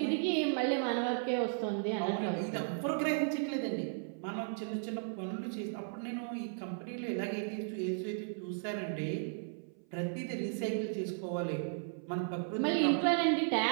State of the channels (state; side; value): silent; left; 54 dB below the other